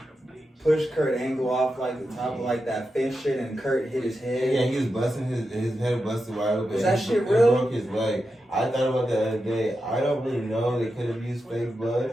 pushed Kurt Angle off like the top of like that fence shit and Kurt hit his head? Yeah, he was busting his head busted wide open. Was that shit real? Broke his leg. I thought about that the other day. I don't really know. They could have used fake blood,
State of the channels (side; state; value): both; normal; correlation 0.89